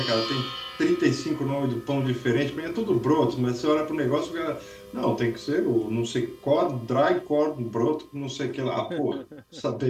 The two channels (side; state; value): both; identical; correlation 1.00